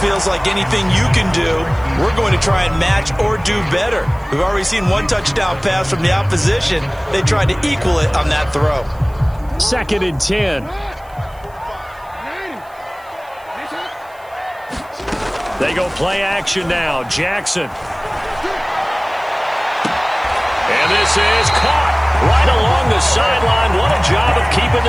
like anything you can do, we're going to try and match or do better. We've already seen one touchdown pass from the opposition. They tried to equal it on that throw. 2nd and 10. They go play action now. Jackson. And this is caught right along the sideline. What a job of keeping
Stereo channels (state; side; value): noise; right; hiss, 29 dB below the sound